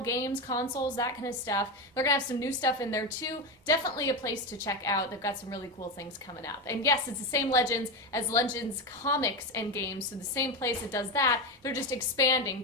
games, consoles, that kind of stuff. They're gonna have some new stuff in there too. Definitely a place to check out. They've got some really cool things coming up. And yes, it's the same Legends as Legends comics and games. So the same place that does that, they're just expanding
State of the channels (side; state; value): both; normal; correlation 0.14